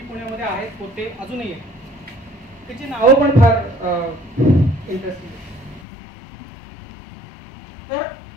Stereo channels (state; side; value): drops out; right; at 5.9 s